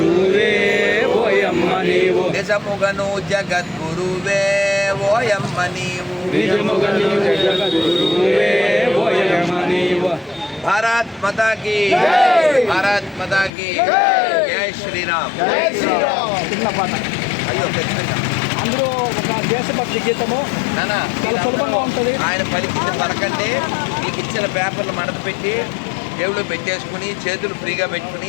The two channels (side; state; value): right; drops out; at 13.5 s